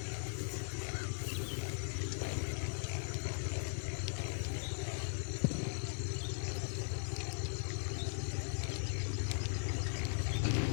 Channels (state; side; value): silent; right; digital silence